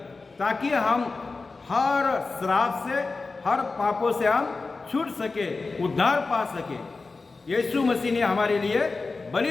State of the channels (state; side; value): quieter; right; 3.9 dB